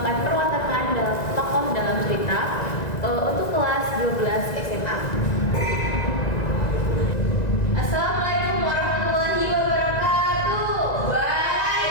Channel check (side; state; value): right; late; 1.9 ms